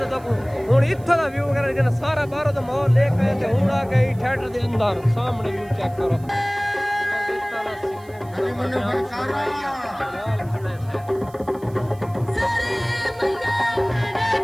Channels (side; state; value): right; noise; hiss, 27 dB below the sound